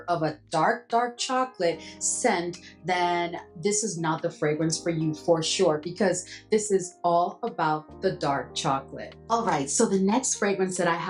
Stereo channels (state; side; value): identical; both; correlation 1.00